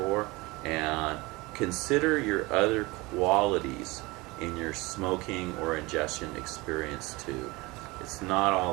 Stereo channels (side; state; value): left; quieter; 23.1 dB